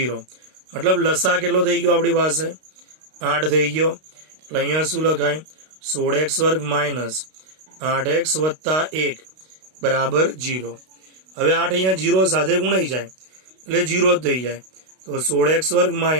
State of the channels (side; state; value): left; late; 32 ms